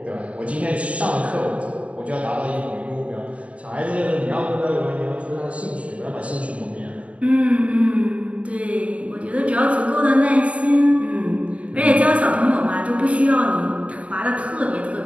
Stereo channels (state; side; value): late; left; 0.064 ms